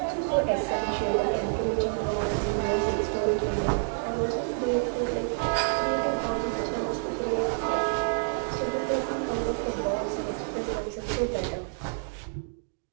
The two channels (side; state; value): left; silent; digital silence